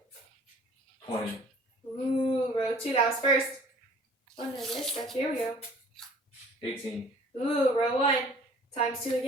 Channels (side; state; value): both; normal; correlation 0.51